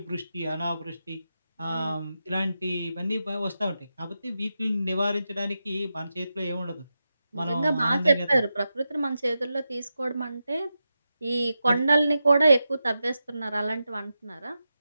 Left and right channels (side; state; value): both; inverted; correlation -0.89